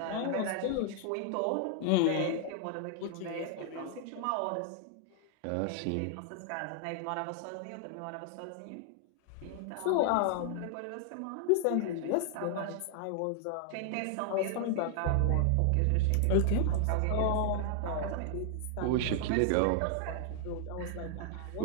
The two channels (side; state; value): both; different; correlation 0.00